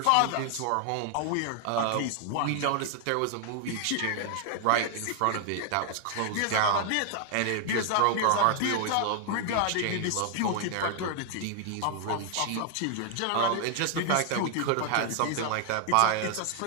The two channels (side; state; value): both; different; correlation 0.00